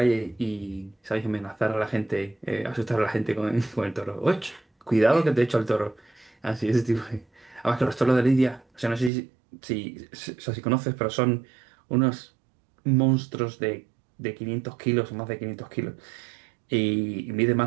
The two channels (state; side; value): drops out; left; at 9.1 s